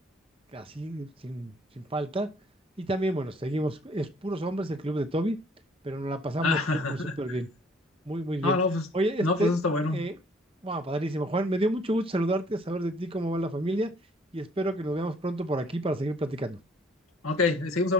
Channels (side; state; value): both; normal; correlation 0.59